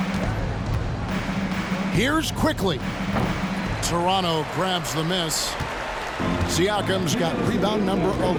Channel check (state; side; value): identical; both; correlation 1.00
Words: Here's Quickly. Toronto grabs the miss. Siakam's got rebound number